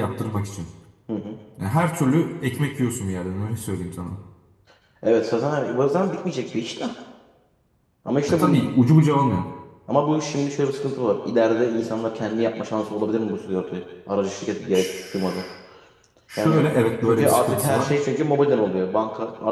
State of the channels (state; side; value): identical; both; correlation 1.00